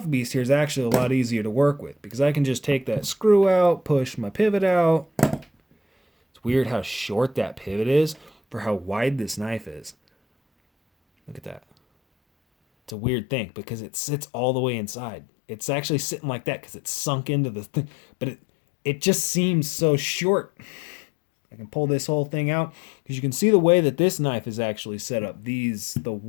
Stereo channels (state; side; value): drops out; right; at 13.0 s